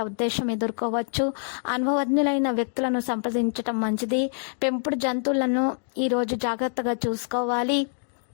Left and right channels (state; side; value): silent; right; digital silence